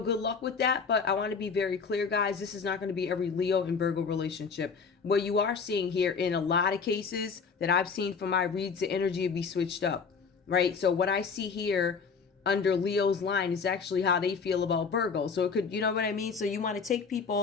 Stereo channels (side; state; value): right; quieter; 5.5 dB